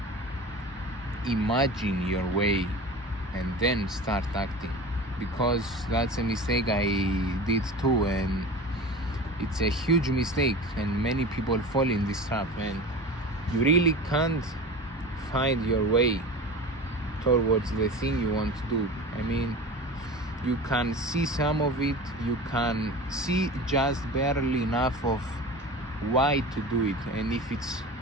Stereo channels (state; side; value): normal; both; correlation 0.33